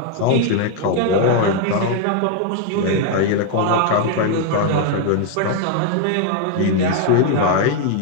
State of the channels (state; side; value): different; both; correlation 0.01